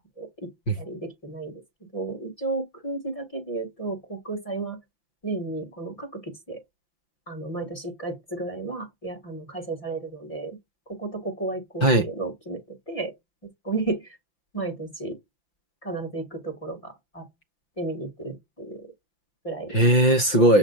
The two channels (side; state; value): right; late; 5.9 ms